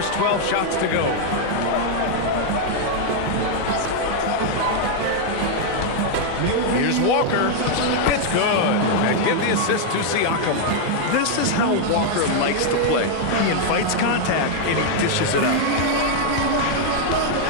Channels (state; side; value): different; both; correlation 0.00